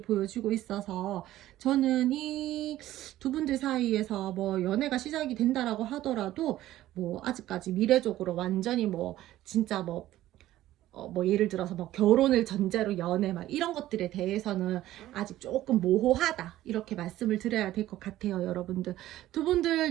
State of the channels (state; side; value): quieter; left; 14.5 dB